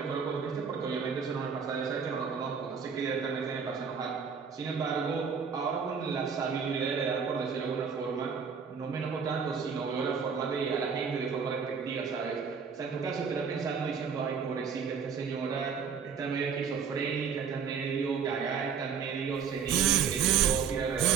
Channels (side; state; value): left; quieter; 6.5 dB